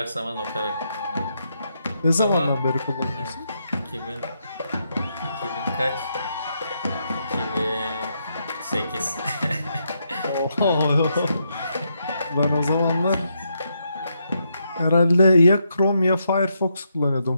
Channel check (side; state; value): both; inverted; correlation -0.80